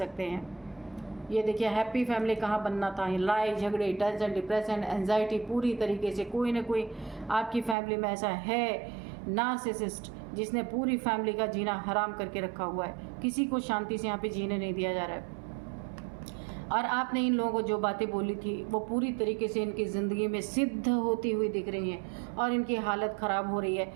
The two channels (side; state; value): left; drops out; at 7.8 s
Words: हैं। ये देखिए हैप्पी फैमिली कहाँ बनना था, लड़ाई झगड़े, टेंशन, डिप्रेशन, एंजाइटी, पूरी तरीके से कोई ना कोई आपकी फैमिली में ऐसा है नार्सिसिस्ट जिसने पूरी फैमिली का जीना हराम करके रखा हुआ है। किसी को शांति से यहाँ पे जीने नहीं दिया जा रहा है। और आपने इन लोगों को जो बातें बोली थी वो पूरी तरीके से इनकी ज़िंदगी में सिद्ध होती हुई दिख रही हैं और इनकी हालत ख़राब हो रही है,